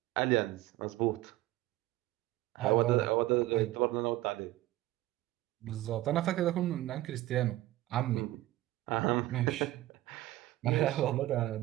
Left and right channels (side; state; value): left; quieter; 16.4 dB